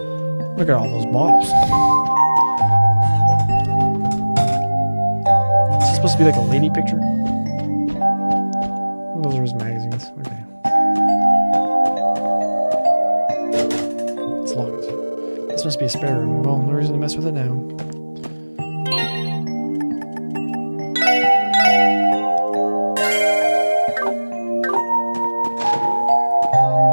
Look at all those bottles. Is this supposed to be like a lady picture? Those are his magazines. Okay. It's locked. This must be a spare room. Well, no reason to mess with it now.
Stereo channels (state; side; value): inverted; both; correlation -1.00